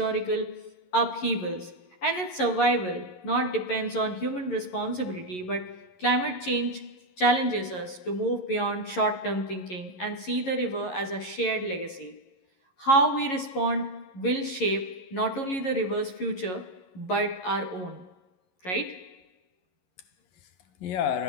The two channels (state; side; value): late; right; 11 ms